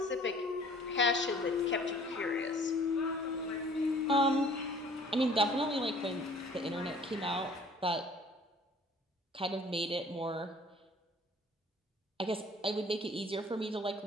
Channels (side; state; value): both; normal; correlation 0.52